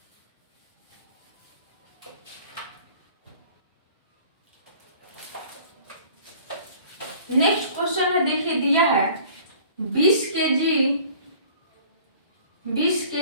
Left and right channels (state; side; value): inverted; both; correlation -0.50